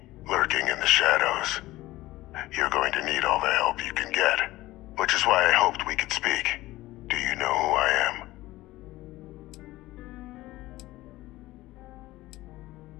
lurking in the shadows. You're going to need all the help you can get, which is why I hoped we could speak. Do you know who I am?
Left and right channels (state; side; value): quieter; right; 17.6 dB